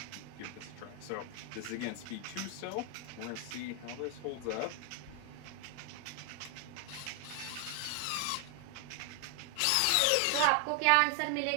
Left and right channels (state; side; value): different; both; correlation 0.00